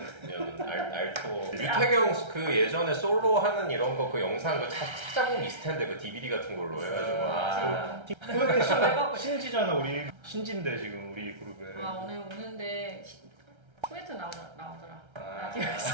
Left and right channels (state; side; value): late; left; 1.3 ms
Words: 알토. 유태경 그 예전에 솔로 하는 이런 거 그 영상 그 찾아보면 있을 텐데 그 DVD 같은 걸로 해가지고. 해봐고 신지잖아 우리. 신지인데 지금 우리 그룹에. 아 오늘 오는데 코멘트 나오더라. 아.